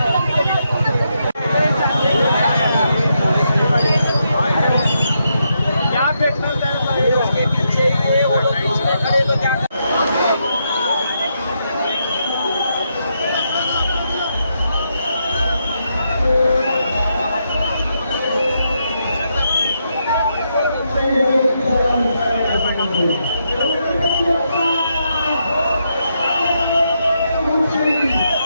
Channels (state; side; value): inverted; both; correlation -0.81